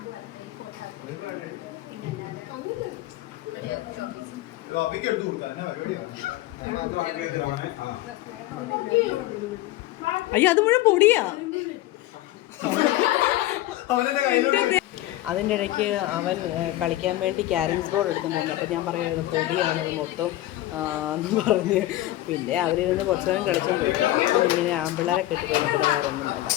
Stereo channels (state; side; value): quieter; right; 15.7 dB